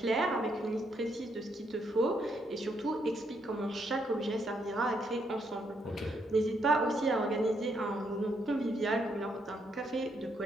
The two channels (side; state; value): both; normal; correlation 0.75